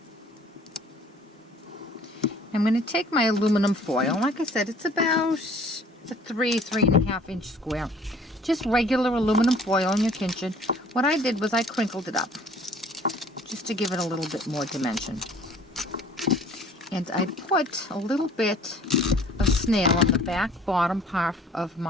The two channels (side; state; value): both; normal; correlation 0.53